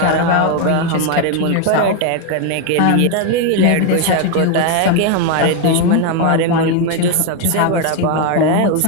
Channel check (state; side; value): different; both; correlation 0.01